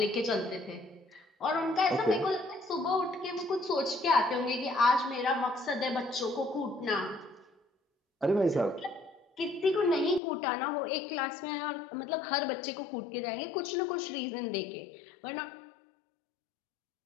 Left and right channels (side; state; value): right; drops out; at 10.2 s